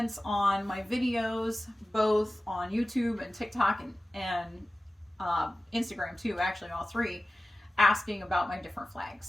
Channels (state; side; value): normal; both; correlation 0.96